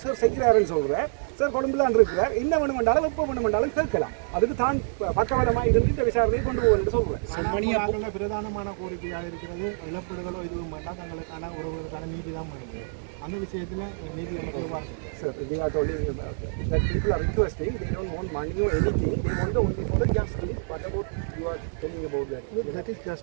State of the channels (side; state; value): left; silent; digital silence